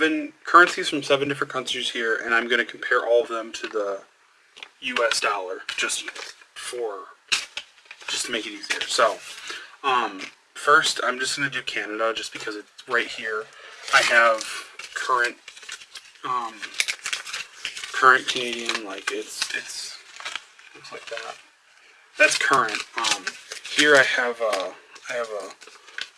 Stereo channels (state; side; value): identical; both; correlation 1.00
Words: currencies from 7 different countries here, and I'm going to compare all of them to the US dollar, just to make it easier. So, first I'm just going to do Canada, just because it's right here. I have current Canadian, like it's looks like that. That's current. Here I have a